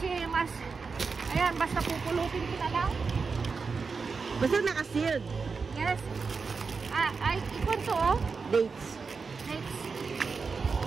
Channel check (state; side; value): quieter; left; 4.9 dB